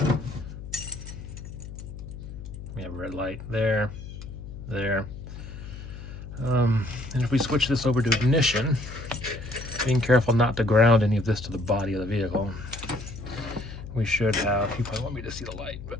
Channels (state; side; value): noise; left; hum, 11 dB below the sound